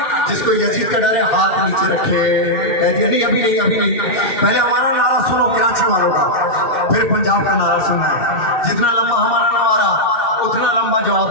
जिसको यजीद का डरे हाथ नीचे रखे, कह दिया नहीं अभी नहीं अभी नहीं। पहले हमारा नारा सुनो कराची वालों का, फिर पंजाब का नारा सुनना है। जितना लंबा हमारा नारा उतना लंबा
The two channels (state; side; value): late; right; 2.7 ms